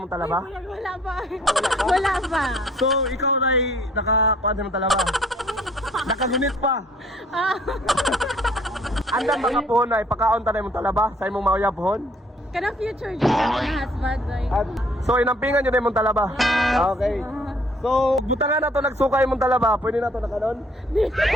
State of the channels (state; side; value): normal; both; correlation 0.61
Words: talaba? Wala pa. Wala pa. So, ikaw na'y nakakuan sa imong talaba? Nakagunit pa? Andan mga pohon na ipakaon ta na imong talaba sa imong mauyab pohon? Kanang future dyan na husband. So, inampingan nyo na imong talaba? Okay. So, butangan na to nagsuka imong talaba, pwede na to nakanon?